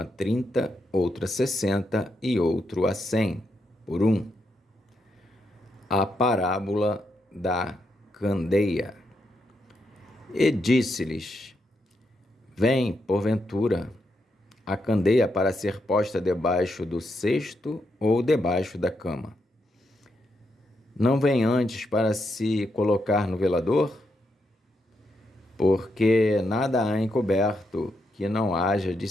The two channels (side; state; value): both; normal; correlation 0.81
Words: 30, outro a 60 e outro a 100. por um. A parábola da candeia. E disse-lhes: Vem, porventura, a candeia para ser posta debaixo do cesto ou debaixo da cama? Não vem antes para se colocar no velador? Porque nada há encoberto que não haja de